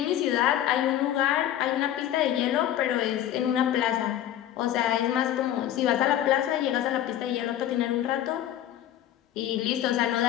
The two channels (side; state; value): right; quieter; 11.8 dB